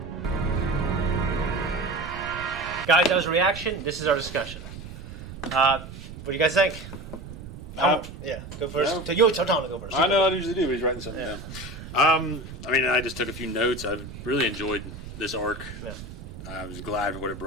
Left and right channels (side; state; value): right; noise; rumble, 12 dB below the sound